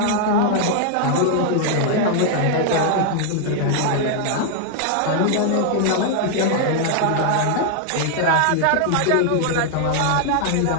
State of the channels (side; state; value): both; different; correlation 0.00